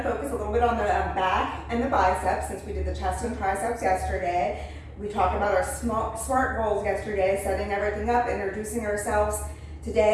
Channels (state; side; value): identical; both; correlation 1.00